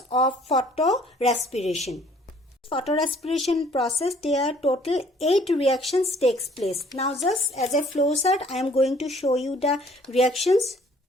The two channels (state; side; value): normal; both; correlation 0.58